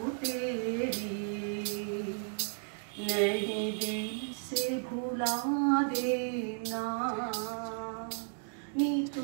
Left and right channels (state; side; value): silent; left; 55 dB below the other